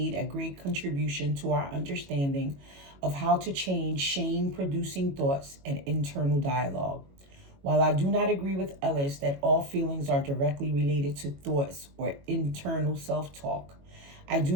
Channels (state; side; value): late; left; 22 ms